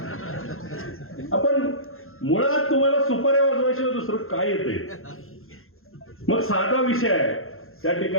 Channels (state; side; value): late; right; 0.61 ms